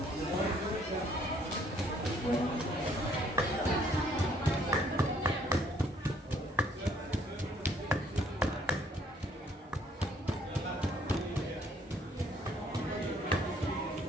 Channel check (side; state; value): both; normal; correlation 0.63